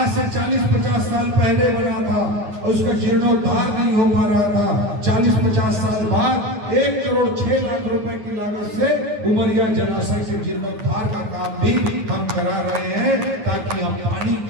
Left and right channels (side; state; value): left; late; 9.6 ms